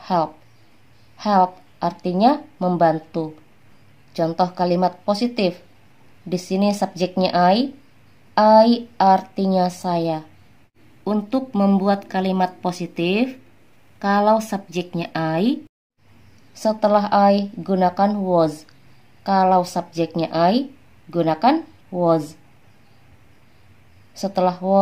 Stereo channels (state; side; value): identical; both; correlation 1.00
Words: help. Help artinya membantu. Contoh kalimat positif. Di sini subjeknya I artinya saya. Untuk membuat kalimat positif, kalau subjeknya I, setelah I gunakan was. Kalau subjeknya I, gunakan was. Setelah